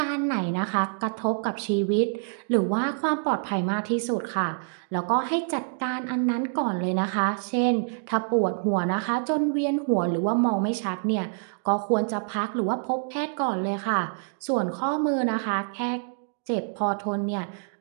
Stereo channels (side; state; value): left; silent; digital silence